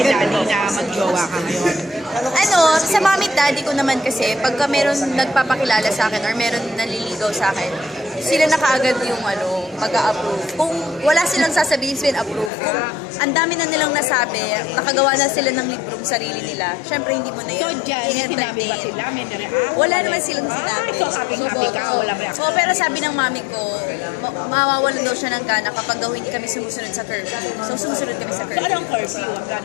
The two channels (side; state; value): right; drops out; at 12.5 s